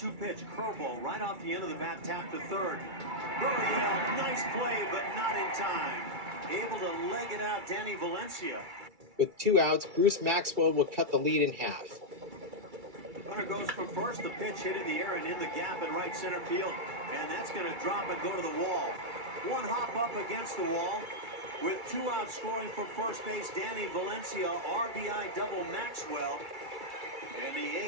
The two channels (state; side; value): late; left; 2.3 ms